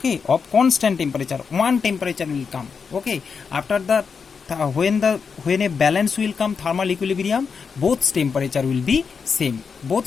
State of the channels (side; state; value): right; quieter; 5.8 dB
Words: of constant temperature. One temperature will come, okay. After that, when a balance will come, thermal equilibrium, both temperature will be same.